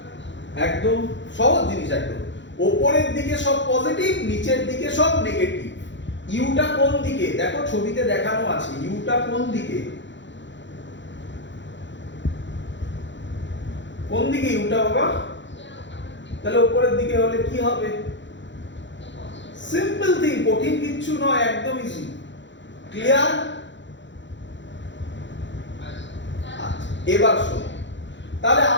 একদম সহজ জিনিস। একদম উপরের দিকে সব পজিটিভ, নিচের দিকে সব নেগেটিভ। ইউটা কোন দিকে? দেখো ছবিতে দেখানো আছে। ইউটা কোন দিকে? কোন দিকে ইউটা বাবা? তাহলে উপরের দিকে হলে কি হবে? সিম্পল থিং, কঠিন কিচ্ছু নয়, একদম ইজি। ক্লিয়ার? এবার শোনো, তাহলে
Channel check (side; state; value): right; late; 0.53 ms